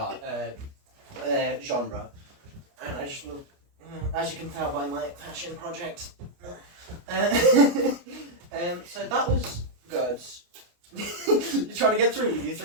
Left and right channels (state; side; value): late; left; 29 ms